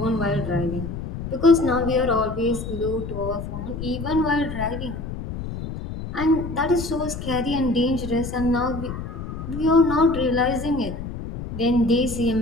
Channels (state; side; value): noise; left; rumble, 7 dB below the sound